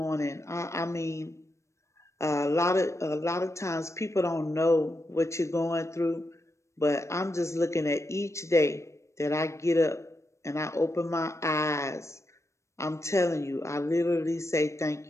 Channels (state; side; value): late; right; 0.14 ms